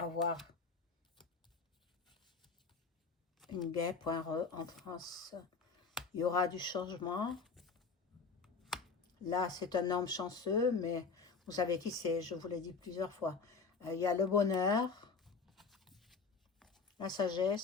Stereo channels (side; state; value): right; quieter; 4.9 dB